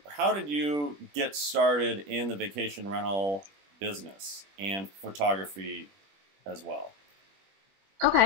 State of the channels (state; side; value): late; left; 21 ms